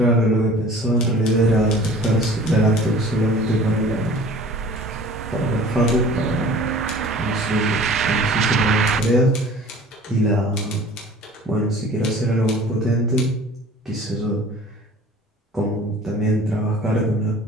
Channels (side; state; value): both; normal; correlation 0.46